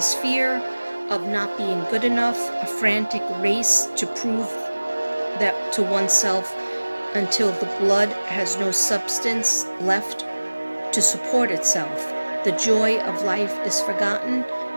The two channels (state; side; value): inverted; both; correlation -1.00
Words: fear of not being good enough, a frantic race to prove that to oneself until the blood has no substance left to support itself. The joy of life is forgotten